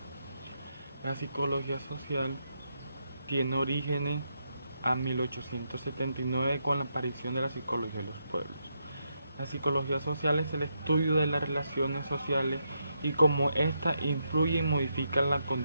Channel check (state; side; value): inverted; both; correlation -0.81